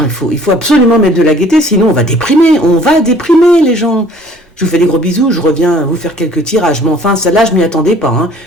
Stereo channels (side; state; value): both; normal; correlation 0.54